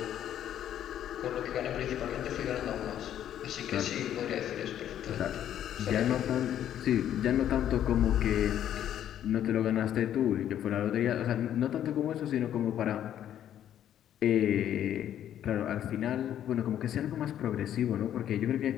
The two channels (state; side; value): quieter; right; 10.7 dB